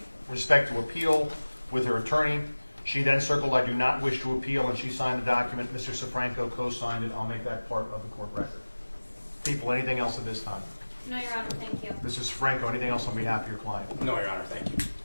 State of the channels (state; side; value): inverted; both; correlation -1.00